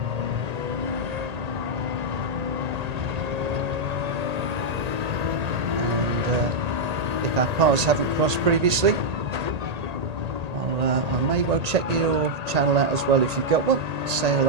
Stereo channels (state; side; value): late; left; 1.8 ms